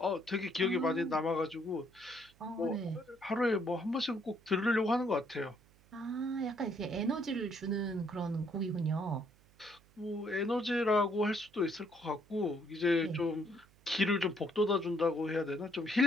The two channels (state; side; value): noise; right; hum, 29 dB below the sound